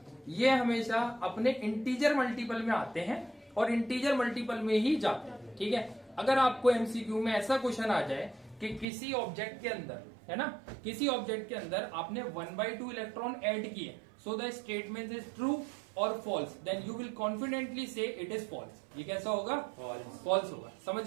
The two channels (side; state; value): left; drops out; at 8.8 s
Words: ये हमेशा अपने इंटीजर मल्टीपल में आते हैं और इंटीजर मल्टीपल में ही जाते हैं, ठीक है। अगर आपको एमसीक्यू में ऐसा क्वेश्चन आ जाए कि किसी ऑब्जेक्ट के अंदर, है ना, किसी ऑब्जेक्ट के अंदर आपने 1/2 इलेक्ट्रॉन ऐड किए, so the statement is true और false, then you will confidently say it is false. ये कैसा होगा, फॉल्स होगा।